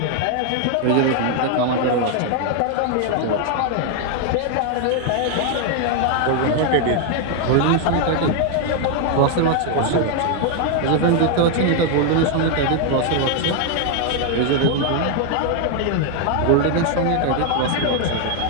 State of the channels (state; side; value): different; both; correlation 0.00